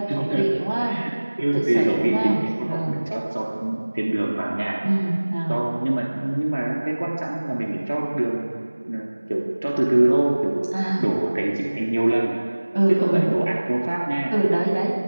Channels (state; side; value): inverted; both; correlation -1.00